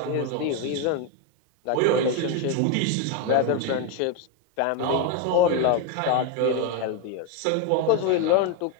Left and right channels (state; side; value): different; both; correlation 0.02